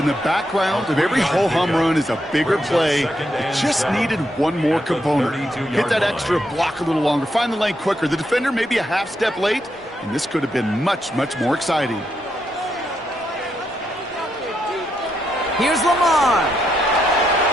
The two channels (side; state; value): both; normal; correlation 0.80